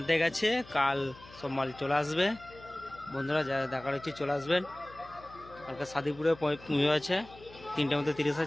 গেছে, কাল সব মাল চলে আসবে। বন্ধুরা যারা দেখার হচ্ছে চলে আসবেন। কালকে সাদিপুরে পুজো আছে, 3টার মধ্যে 30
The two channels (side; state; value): left; noise; hum, 20 dB below the sound